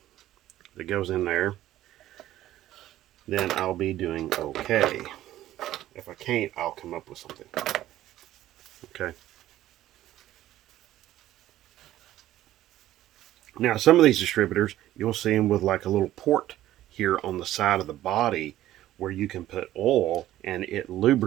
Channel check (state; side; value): quieter; left; 13.9 dB